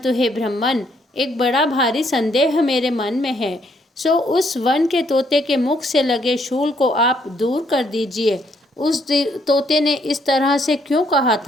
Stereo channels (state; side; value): normal; both; correlation 0.70